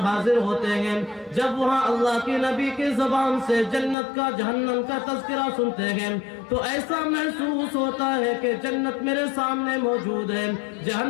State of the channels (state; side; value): drops out; right; at 4.0 s